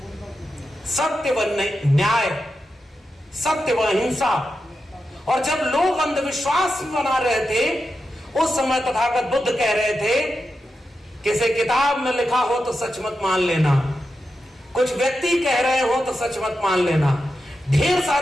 सत्य व न्याय, सत्य व अहिंसा। और जब लोग अंधविश्वास बना रहे थे, उस समय तथागत बुद्ध कह रहे थे, किसी किताब में लिखा हो तो सच मत मान लेना, कुछ व्यक्ति कह रहे हो तो सच मत मान लेना, ढेर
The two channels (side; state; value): both; normal; correlation 0.89